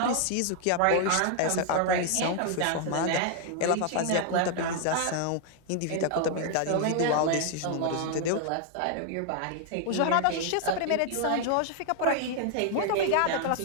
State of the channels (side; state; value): both; different; correlation 0.00